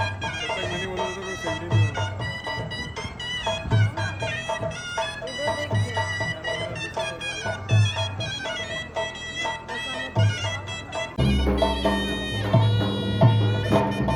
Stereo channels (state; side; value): identical; both; correlation 1.00